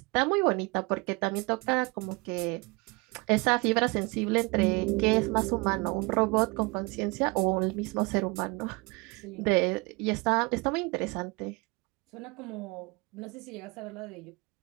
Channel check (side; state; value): left; quieter; 27.3 dB